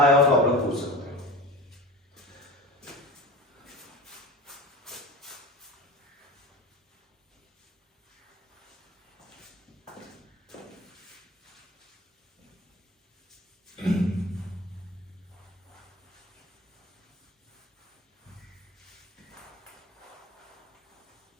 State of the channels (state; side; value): normal; both; correlation 0.33